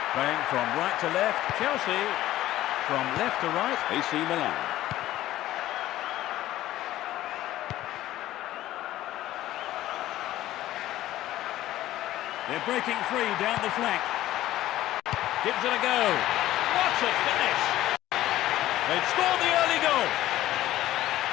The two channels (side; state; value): right; quieter; 14.6 dB